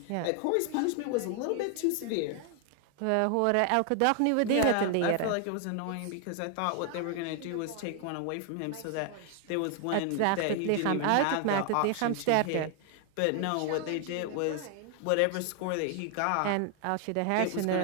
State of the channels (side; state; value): both; different; correlation 0.00